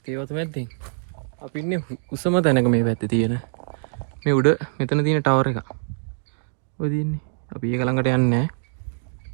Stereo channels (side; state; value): left; silent; digital silence